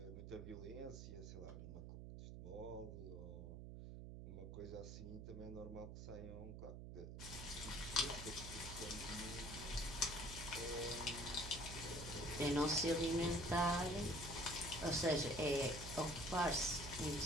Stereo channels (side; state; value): right; noise; hum, 9 dB below the sound